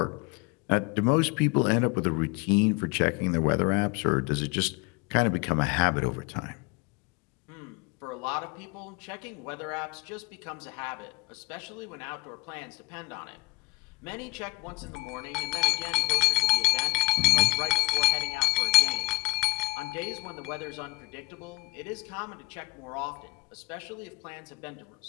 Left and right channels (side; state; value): right; quieter; 23.4 dB